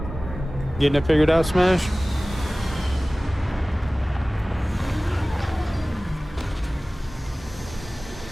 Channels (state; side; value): normal; both; correlation 0.98